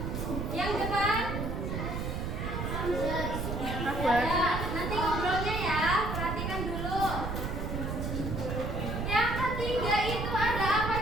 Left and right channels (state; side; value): noise; right; rumble, 3 dB below the sound